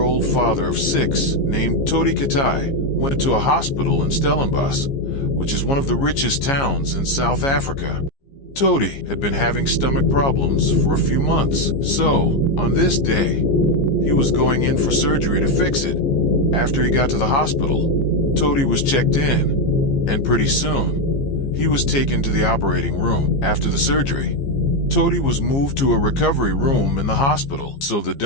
father of 6 named Todi Katai went to a hospital in Stellenbosch, which is one of the richest towns in South Africa. Todi had been having stomach problems for a few months, so on this day, he was going in for surgery to fix it. After he got to the hospital, Todi was checked in, and pretty soon, he was taken to the operating room. After the surgery, Todi was moved to a recovery room in the hospital so the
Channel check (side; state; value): right; late; 15 ms